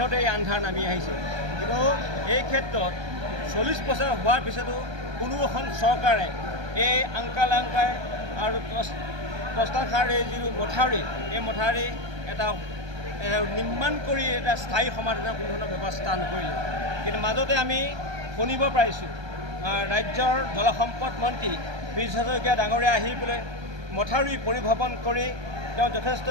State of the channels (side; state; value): left; late; 1.3 ms